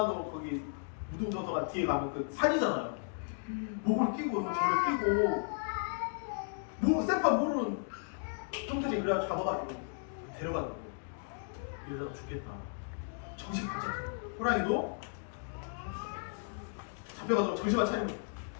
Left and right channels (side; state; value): right; silent; digital silence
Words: 거기 무동도서관 뒤에 가면 그 산이잖아요. 목을 끼고 저를 끼고 생판 모르는 형들이 그래가지고 잡아가지고 데려가는 거예요. 이 여자가 죽겠다. 정신 바짝 차려. 호랑이도 잡혀가서 정신만 차리면